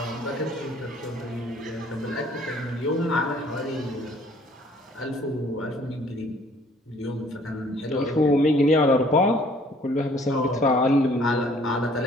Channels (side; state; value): both; normal; correlation 0.58